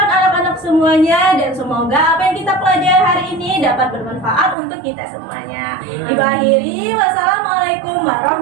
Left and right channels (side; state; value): left; drops out; at 4.5 s